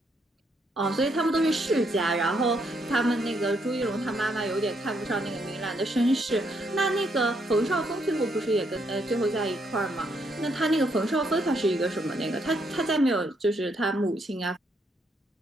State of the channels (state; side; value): normal; both; correlation 0.74